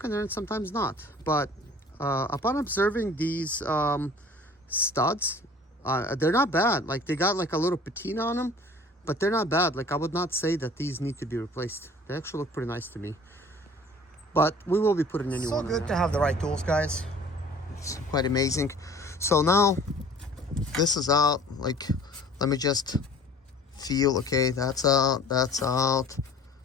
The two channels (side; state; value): both; normal; correlation 0.48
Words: in there and sometimes not. But upon observing these studs, they're not bad. Like, they got like a little patina on them, but they're not bad. Like, I would not say that these need to be replaced. They actually look pretty nice to me. but we will be putting a new one. So good to have the right tools, guys. It's quite amazing. So now this is out. Like, let me just feel. Okay, that's out. That's out.